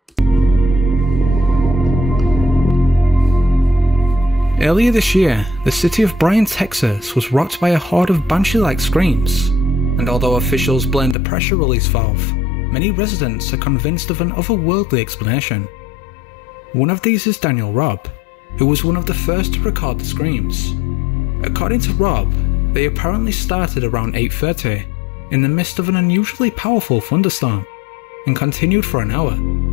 Earlier this year, the city of Bryan, Texas was rocked by a horde of banshee-like screams, and although officials blamed the pressure release valve, many residents are convinced of an otherworldly explanation. One of these is Daniel Robb, who was one of the first to record the screams. According to Robb, they apparently started around 8:30 in the midst of an unusually powerful thunderstorm, and continued for an hour.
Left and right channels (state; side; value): drops out; right; at 11.2 s